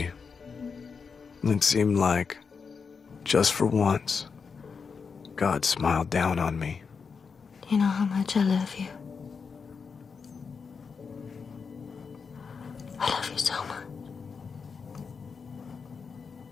It seemed like, just for once, God smiled down on me. You know how much I love you. I love you so much.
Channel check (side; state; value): right; quieter; 5.6 dB